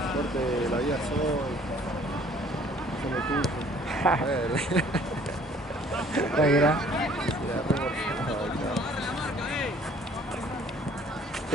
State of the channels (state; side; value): normal; both; correlation 0.56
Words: Corte la vida soy. Son de tuyo. Tranquila.